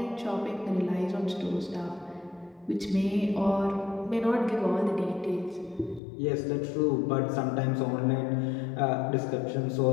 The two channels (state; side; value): drops out; right; at 6.0 s